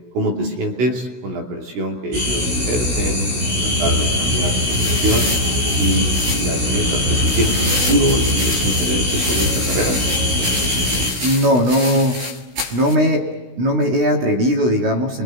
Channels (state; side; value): late; left; 16 ms